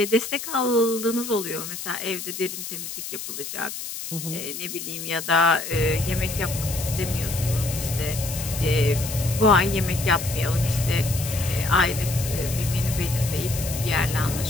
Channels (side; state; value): left; noise; hiss, 8 dB below the sound